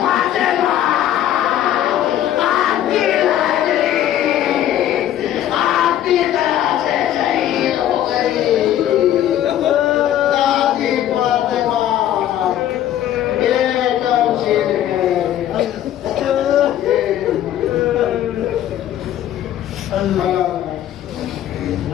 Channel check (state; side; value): quieter; right; 11.8 dB